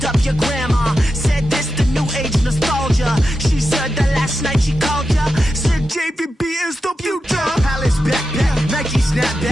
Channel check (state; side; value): normal; both; correlation 0.90